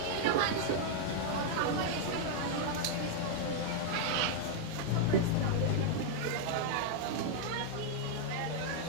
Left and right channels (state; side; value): different; both; correlation 0.00